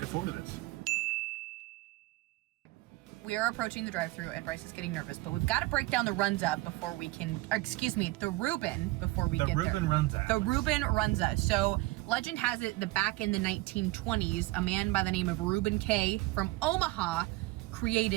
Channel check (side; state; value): left; quieter; 20.5 dB